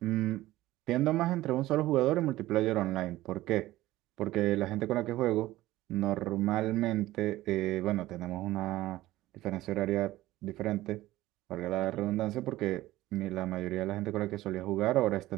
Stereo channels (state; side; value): quieter; left; 16.3 dB